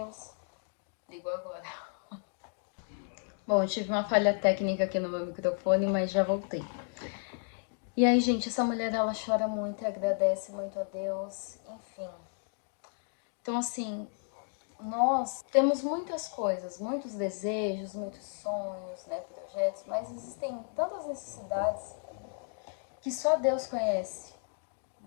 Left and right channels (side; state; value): right; silent; 56 dB below the other